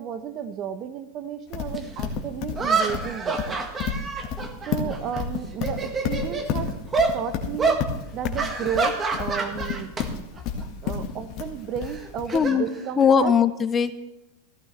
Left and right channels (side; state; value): both; normal; correlation 0.46